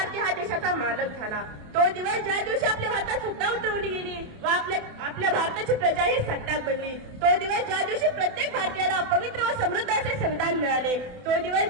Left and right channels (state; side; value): late; left; 28 ms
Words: हा देशाचा मालक झाला. तो दिवस ज्या दिवशी आपल्या भारतात सत्ता उतरवली गेली व आपल्या भारताची प्रजा ही सत्ताक बनली. तो दिवस ज्या दिवशी प्रत्येक भारतीयाला पवित्र व समृद्ध असे संविधान मिळाले. तो दिवस